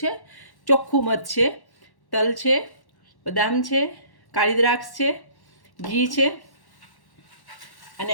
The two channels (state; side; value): late; right; 1.1 ms